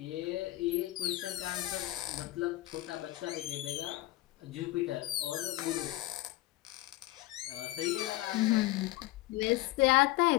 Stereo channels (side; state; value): right; quieter; 17.6 dB